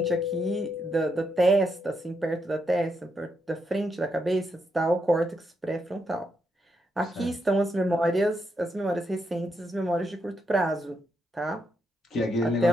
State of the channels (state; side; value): normal; both; correlation 0.80